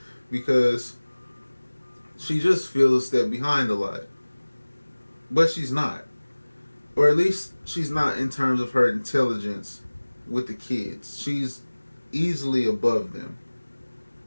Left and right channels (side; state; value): both; inverted; correlation -1.00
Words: because she just feels a step behind a lot. But she's not. Or at least she's not in terms of her intelligence with the kids. She's easily above them.